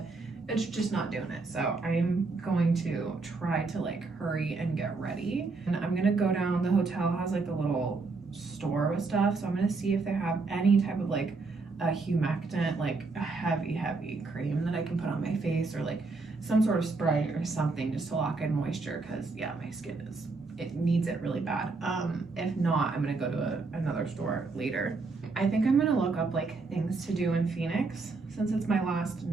it's just not doing it. So I'm going to try to like hurry and get ready. And I'm gonna go down, the hotel has like a little store with stuff. So I'm gonna see if they have any type of like a humectant, like a heavy cream that I can put on my face, or like some sort of spray or something just to lock in moisture, because yeah, my skin it needs it really bad. If not, I'm gonna go to another store later. I think I'm gonna look up like things to do in Phoenix since it's my last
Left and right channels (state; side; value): quieter; left; 3.9 dB